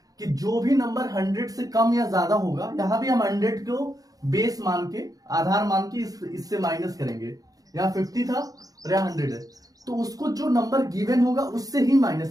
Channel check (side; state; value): left; late; 0.18 ms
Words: कि जो भी नंबर 100 से कम या ज्यादा होगा, यहाँ भी हम 100 को बेस मान के, आधार मान के इससे माइनस करेंगे। यहाँ 50 था और यहाँ 100 है, तो उसको जो नंबर गिवन होगा उससे ही